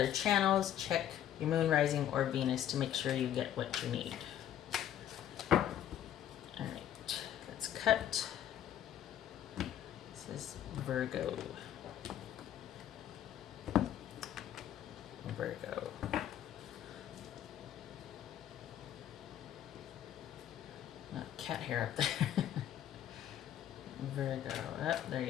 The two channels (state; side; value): quieter; right; 10.9 dB